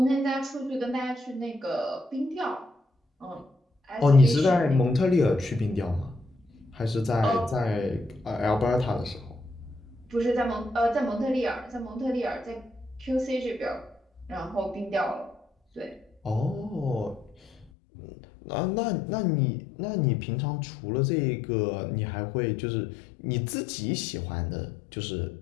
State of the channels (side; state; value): right; drops out; at 17.7 s